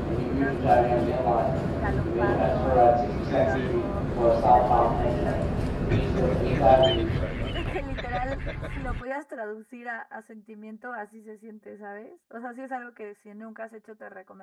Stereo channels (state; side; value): identical; both; correlation 1.00